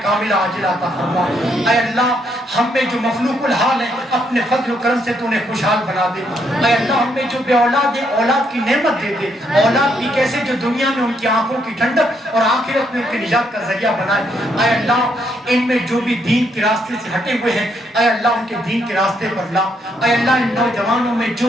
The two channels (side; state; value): both; normal; correlation 0.74